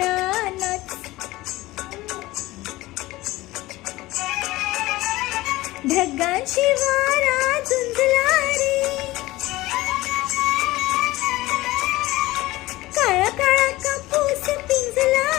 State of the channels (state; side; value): quieter; right; 18.6 dB